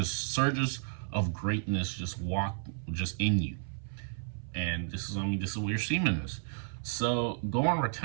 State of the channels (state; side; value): silent; left; 56 dB below the other